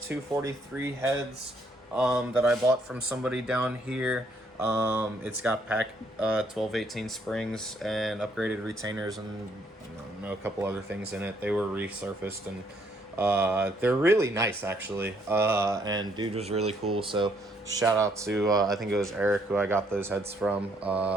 heads that I bought from somebody down here. It's got pack 12-18 springs and upgraded retainers and a couple other things in it. They were resurfaced and they're really nice actually. And dude was really cool. So shout out to I think it was Eric who I got those heads from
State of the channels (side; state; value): both; normal; correlation 0.69